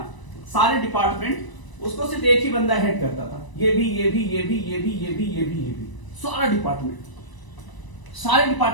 सारे डिपार्टमेंट उसको सिर्फ एक ही बंदा हेड करता था। ये भी, ये भी, ये भी, ये भी, ये भी, ये भी, ये भी, सारा डिपार्टमेंट, सारे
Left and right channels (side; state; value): right; late; 1.0 ms